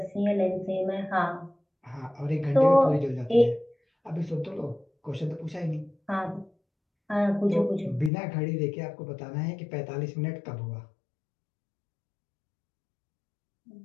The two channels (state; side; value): drops out; right; at 8.1 s